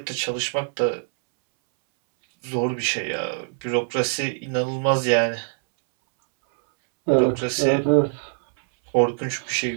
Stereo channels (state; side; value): silent; left; 63 dB below the other